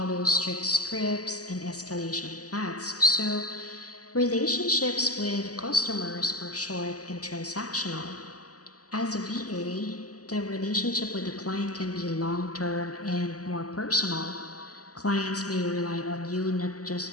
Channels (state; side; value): late; right; 0.67 ms